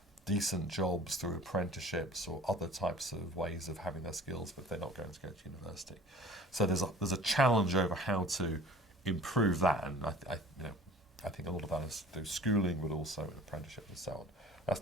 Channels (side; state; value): both; normal; correlation 0.46